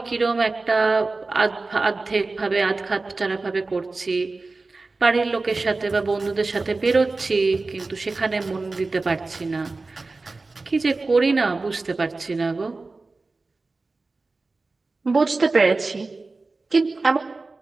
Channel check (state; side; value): quieter; left; 3.6 dB